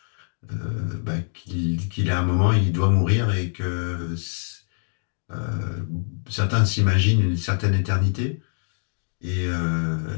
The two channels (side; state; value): right; silent; 62 dB below the other